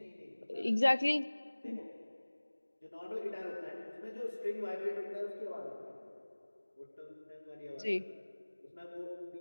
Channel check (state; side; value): inverted; both; correlation -1.00